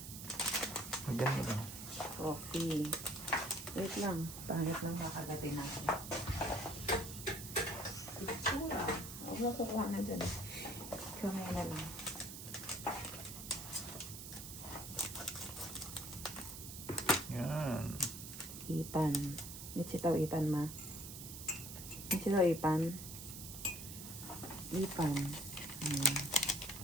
Maganda ba? Coffee. Wait lang. Pangit lang makagatin natin. Itsura. Huwag mo kukuha na dyan. Kamay na lang. Yan. Ipan. Nitsitaw ipan ma. Nitsitaw ipan. Ipan.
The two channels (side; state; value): right; noise; hiss, 10 dB below the sound